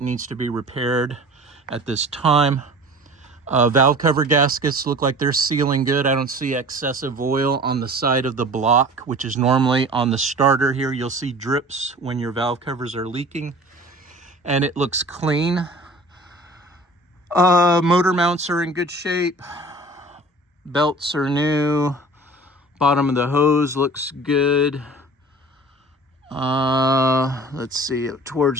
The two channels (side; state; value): both; normal; correlation 0.43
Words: needs to be repaired at this time. Valve cover gaskets look like they're sealing good. I don't see excessive oil on the side of the block, which is normally on the starter here. You'll see drips when your valve covers are leaking, and it looks clean. Motor mounts are in good shape. Belts are new. Bottom of the hose looks good. Let's see,